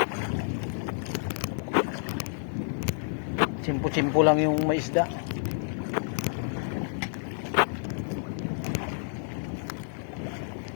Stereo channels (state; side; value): silent; right; 58 dB below the other